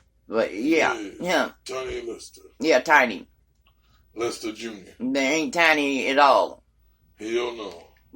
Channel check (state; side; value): identical; both; correlation 1.00